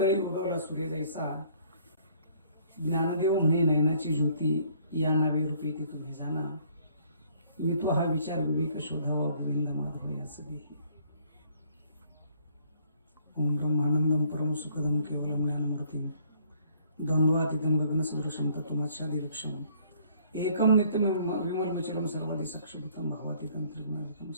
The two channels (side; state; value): both; inverted; correlation -0.61